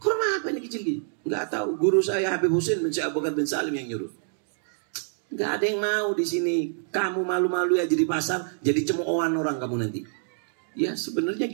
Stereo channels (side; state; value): left; silent; digital silence